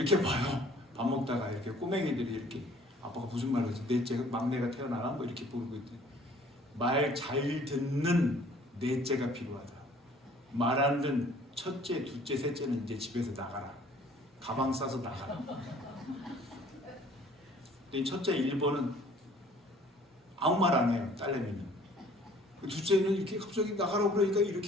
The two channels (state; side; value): normal; both; correlation 0.55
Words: 봐요. 밥 먹다가 이렇게 꼬맹이들이 이렇게 아빠가 무슨 말을 하지? 넷째 막내가 태어나나? 뭐 이렇게 부르고 있대. 말 잘 듣는 넷째가 필요하다. 말 안 듣는 첫째, 둘째, 셋째는 이제 집에서 나가라. 가방 싸서 나가라. 근데 첫째 1번은 아무 말 안 해요. 딸내미는. 둘째는 이렇게 갑자기 나가라고 그러니까